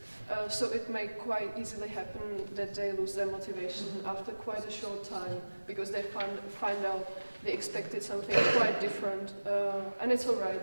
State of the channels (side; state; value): both; inverted; correlation -1.00